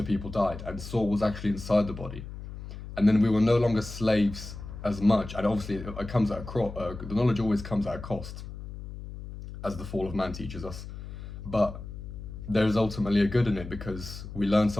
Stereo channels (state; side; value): noise; left; hum, 11 dB below the sound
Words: people died, and Saul was actually inside the body, and then we were no longer slaves as much. And obviously, it comes at the knowledge always comes at a cost, as the fall of man teaches us. But there is ultimately a good in it because we learn